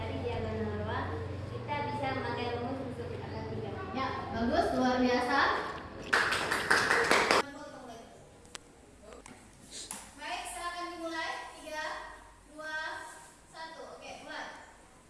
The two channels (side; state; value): both; identical; correlation 1.00